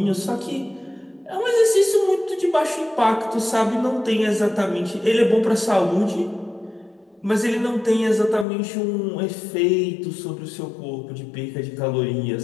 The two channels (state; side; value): drops out; right; at 8.5 s